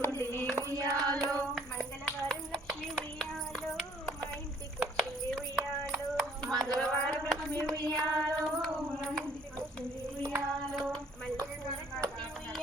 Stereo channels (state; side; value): normal; both; correlation 0.60